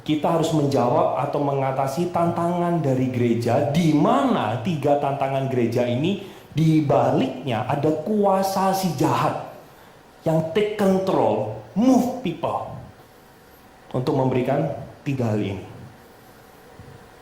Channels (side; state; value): both; identical; correlation 1.00